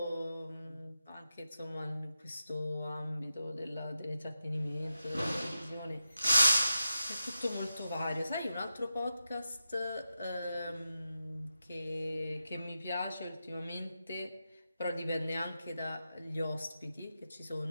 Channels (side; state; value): both; inverted; correlation -0.89